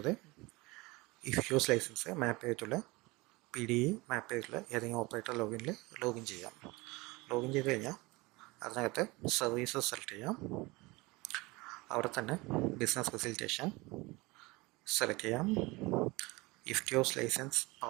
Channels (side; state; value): left; quieter; 23.3 dB